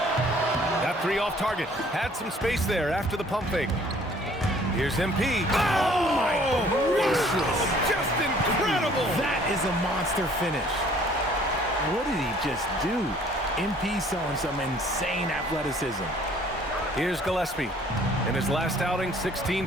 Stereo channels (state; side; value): normal; both; correlation 0.57